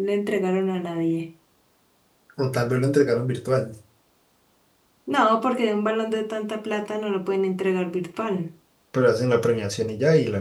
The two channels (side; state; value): both; identical; correlation 1.00